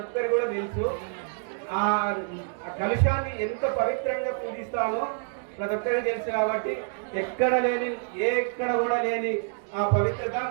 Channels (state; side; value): silent; left; 60 dB below the other